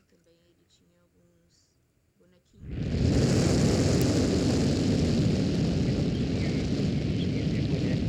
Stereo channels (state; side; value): identical; both; correlation 1.00